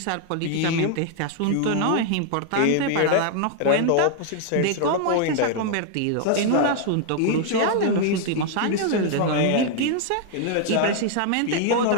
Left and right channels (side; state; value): both; different; correlation 0.00